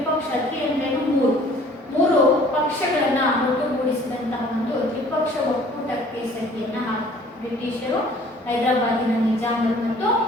ಅಂದ್ರೆ ಮೂರು ಪಕ್ಷಗಳನ್ನ ಒಟ್ಟುಗೂಡಿಸಿದಂತಹ ಒಂದು ತ್ರಿಪಕ್ಷ ಒಕ್ಕೂಟಕ್ಕೆ ಸಹಿಯನ್ನ ಹಾಕ್ತಾರೆ. ಬ್ರಿಟಿಷರು, ಹೈದರಾಬಾದಿನ ನಿಜಾಮರು ಮತ್ತು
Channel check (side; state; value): both; normal; correlation 0.53